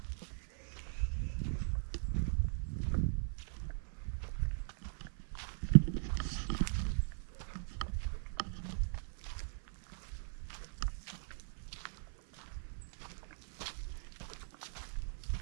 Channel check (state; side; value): silent; left; 51 dB below the other